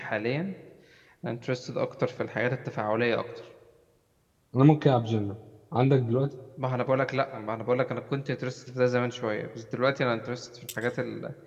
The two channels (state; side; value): identical; both; correlation 1.00